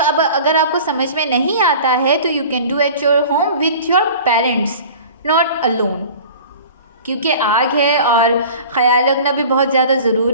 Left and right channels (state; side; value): inverted; both; correlation -0.42